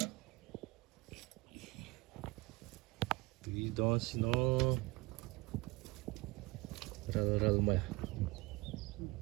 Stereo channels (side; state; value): left; quieter; 23.1 dB